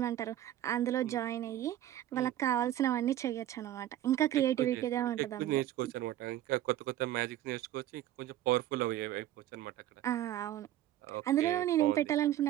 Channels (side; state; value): left; quieter; 12.8 dB